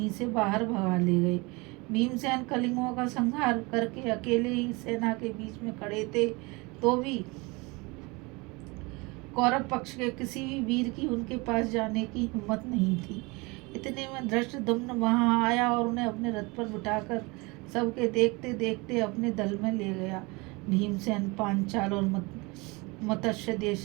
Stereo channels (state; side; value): quieter; left; 26.1 dB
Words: से बाहर भगा ले गए। भीमसेन कलिंगों का संहार करके अकेले ही सेना के बीच में खड़े थे, तो भी कौरव पक्ष के किसी भी वीर की उनके पास जाने की हिम्मत नहीं थी। इतने में धृष्टद्युम्न वहां आया और उन्हें अपने रथ पर बिठाकर सबके देखते देखते अपने दल में ले गया। भीमसेन पांचाल और मत्स्य